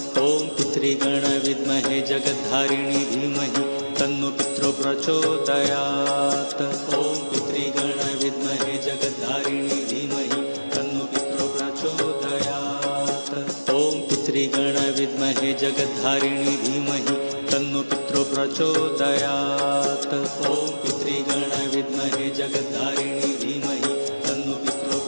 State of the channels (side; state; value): both; inverted; correlation -1.00